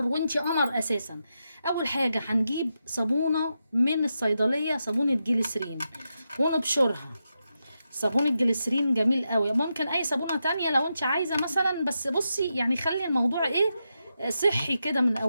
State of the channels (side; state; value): both; inverted; correlation -0.87